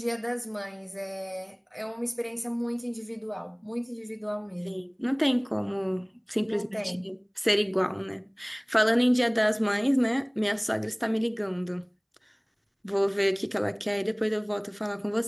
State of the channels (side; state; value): both; identical; correlation 1.00